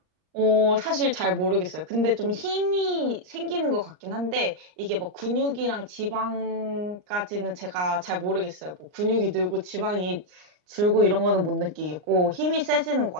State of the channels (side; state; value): left; late; 39 ms